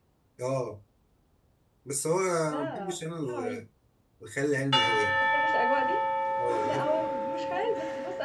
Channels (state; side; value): identical; both; correlation 1.00